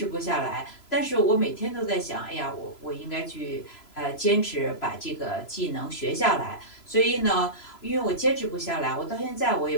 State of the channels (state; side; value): late; right; 3.0 ms